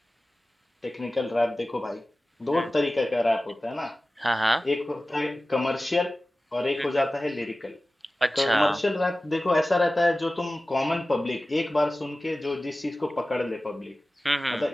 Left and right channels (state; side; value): normal; both; correlation 0.96